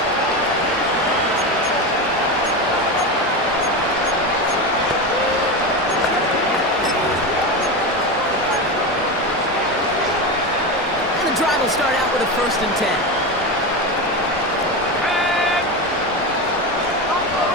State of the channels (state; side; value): normal; both; correlation 0.19